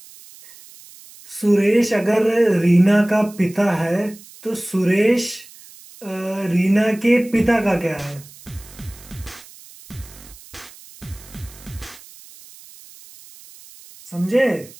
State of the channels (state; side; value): noise; right; hiss, 21 dB below the sound